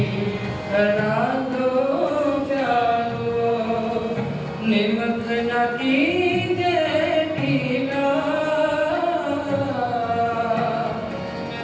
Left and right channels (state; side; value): identical; both; correlation 1.00